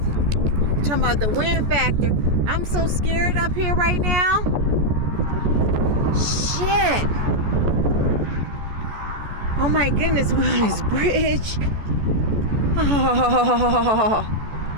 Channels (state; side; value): late; left; 14 ms